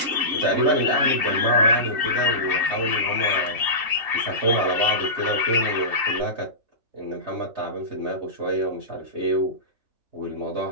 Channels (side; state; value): left; late; 2.7 ms